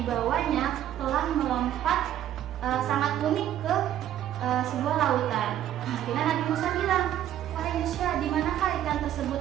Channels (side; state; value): left; quieter; 11.6 dB